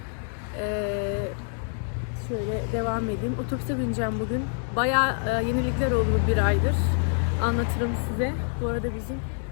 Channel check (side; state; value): right; silent; 60 dB below the other